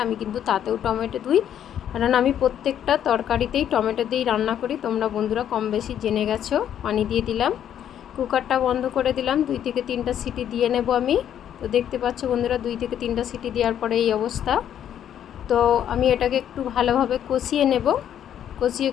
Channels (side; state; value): right; quieter; 10.0 dB